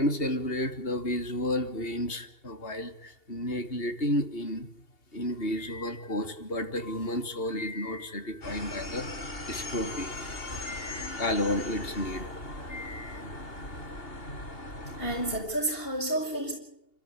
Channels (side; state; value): right; late; 2.8 ms